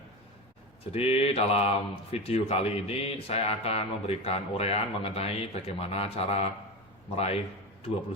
Jadi dalam video kali ini saya akan memberikan uraian mengenai bagaimana cara meraih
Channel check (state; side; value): normal; both; correlation 0.23